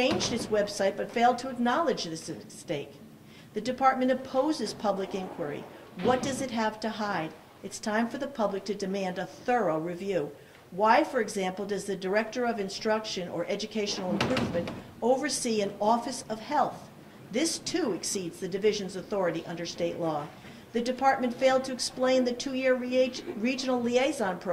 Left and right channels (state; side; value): identical; both; correlation 1.00